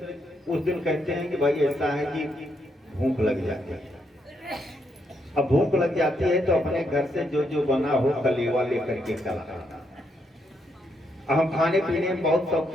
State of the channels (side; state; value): both; normal; correlation 0.78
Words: उस दिन कहते हैं कि भाई ऐसा है कि भूख लग जाती है। अब भूख लग जाती है तो अपने घर से जो जो बना हो कलेवा लेकर के चला। हम खाने पीने में बहुत